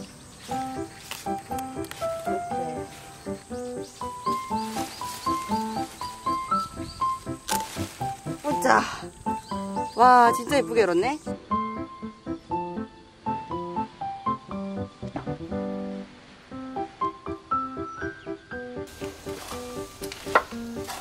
보자. 와 진짜 예쁘게 열었네.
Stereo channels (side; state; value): both; identical; correlation 1.00